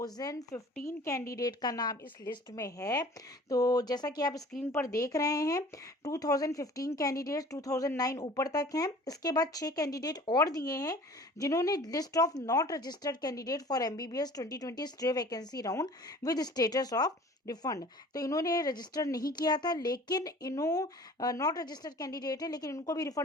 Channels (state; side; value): normal; both; correlation 0.46